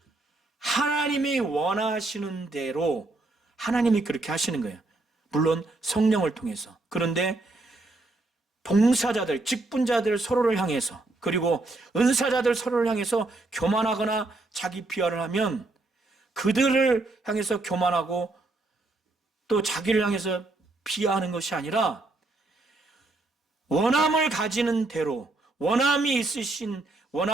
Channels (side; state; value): left; quieter; 3.1 dB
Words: 하나님이 원하시는 대로 하나님이 그렇게 하시는 거예요. 물론 성령을 통해서. 그런데 봉사자들, 직분자들 서로를 향해서, 그리고 은사자들 서로를 향해서 교만하거나 자기 비하를 하면 그들을 향해서 교만하고 또 자기를 향해서 비하하는 것이 아니라 원함을 가지는 대로, 원함이 있으신,